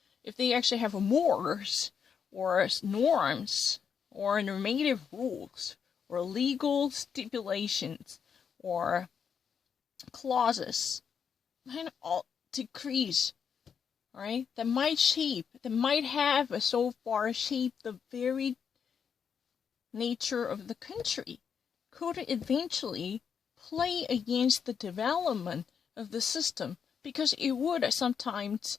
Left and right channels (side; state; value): right; quieter; 7.0 dB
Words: If they actually have mores, or norms, or normative rules, or legal stipulations, or clauses, and all decrees, right? That might have so far shaped the very nature of the country, could eventually play against the development of the system, because it would sometimes